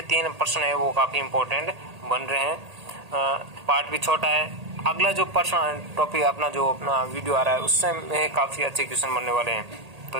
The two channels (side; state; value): left; late; 1.8 ms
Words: 3 प्रश्न है वो काफी इंपॉर्टेंट बन रहे हैं। पार्ट भी छोटा है। अगला जो प्रश्न टॉपिक अपना वीडियो आ रहा है उससे में काफी अच्छे क्वेश्चन बनने वाले हैं। तो